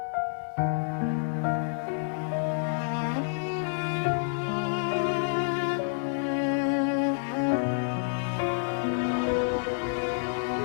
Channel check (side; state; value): right; silent; digital silence